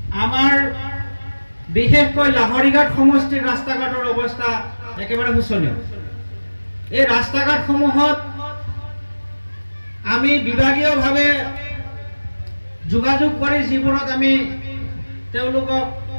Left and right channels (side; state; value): both; inverted; correlation -1.00